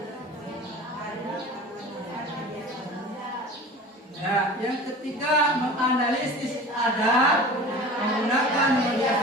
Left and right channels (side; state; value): both; normal; correlation 0.38